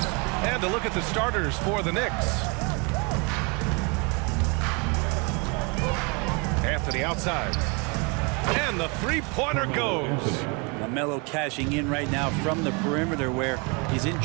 And a look at the starters for the Knicks. Anthony outside. And the three-pointer goes. LaMelo cashing in right now from the perimeter where he's in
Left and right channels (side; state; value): left; quieter; 31.2 dB